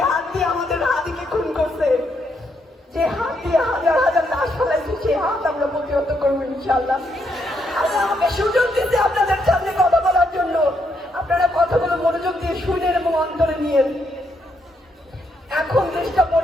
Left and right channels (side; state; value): both; normal; correlation 0.77